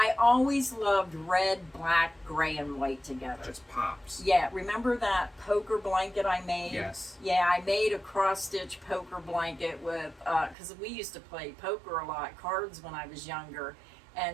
always loved red, black, gray, and white together. Just pops. Yeah, remember that poker blanket I made? Yes. Yeah, I made a cross-stitch poker blanket with, because we used to play poker a lot, cards when I was younger.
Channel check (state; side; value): drops out; left; at 10.6 s